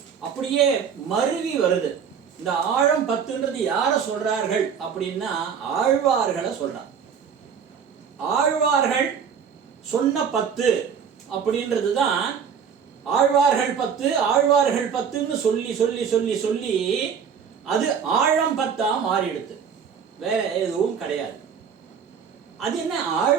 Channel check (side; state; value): left; quieter; 7.1 dB